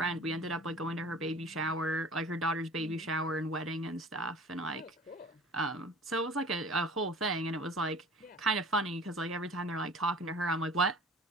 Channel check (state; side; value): normal; both; correlation 0.45